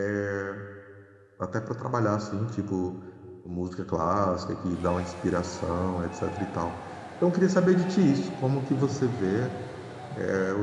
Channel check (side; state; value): both; identical; correlation 1.00